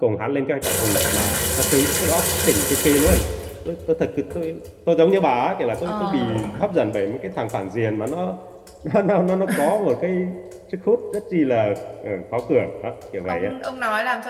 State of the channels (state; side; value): identical; both; correlation 1.00